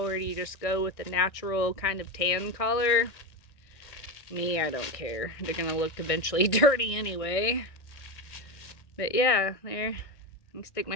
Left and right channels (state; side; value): late; right; 1.6 ms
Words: do you just go with the natural kind of tan color? Me, I don't care. They're gonna look eventually dirty anyway. But yeah, there. I can stick